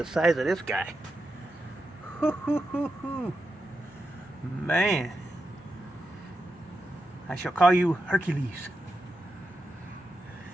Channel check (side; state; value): both; normal; correlation 0.87